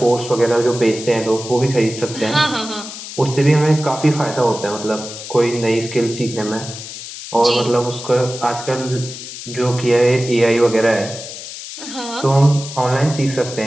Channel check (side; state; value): left; noise; hiss, 11 dB below the sound